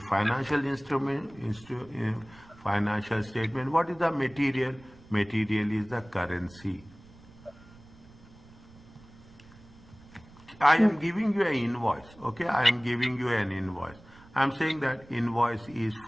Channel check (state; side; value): noise; right; rumble, 23 dB below the sound